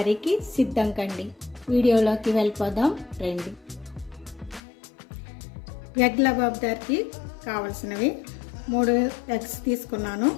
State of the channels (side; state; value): right; drops out; at 4.6 s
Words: సిద్ధం కండి. వీడియోలోకి వెళ్ళిపోదాం రండి. ఎగ్ లబాబ్దార్కి కావలసినవి 3 ఎగ్స్ తీసుకున్నాను.